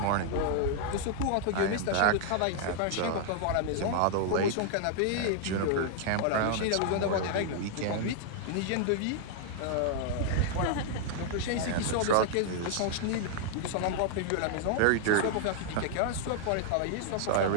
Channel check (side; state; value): both; different; correlation 0.00